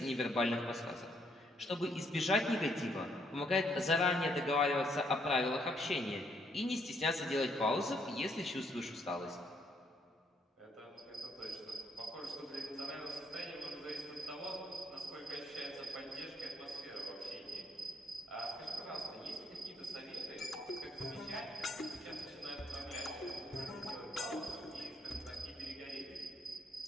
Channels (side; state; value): both; normal; correlation 0.71